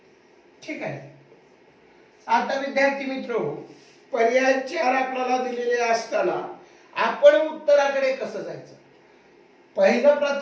ठीक आहे. आता विद्यार्थी मित्र हो, पर्याय 4 आपल्याला दिलेले असताना आपण उत्तराकडे कसं जायचं? पहिलं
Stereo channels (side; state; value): both; identical; correlation 1.00